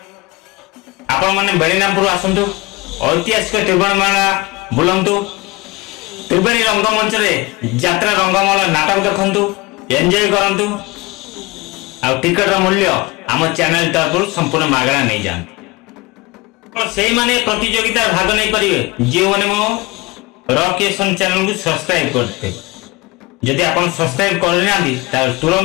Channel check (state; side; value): quieter; right; 22.7 dB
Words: आपण माने बेणीरामपुर आसंतु ऐतिहासिक त्रिवेणी मेला बुलंतु। त्रिवेणी रंगमंच रे यात्रा रंगमहल नाटक देखंतु एंजॉय करंतु। आ टिकट मूल्य आम चैनल तरफ संपूर्ण मागणा नहीं जान। से माने प्रतियोगिता भाग नहीं पारे जो माने मो रॉक केशन चैनल को सब्सक्राइब करते। जदि आपण सब्सक्राइब करना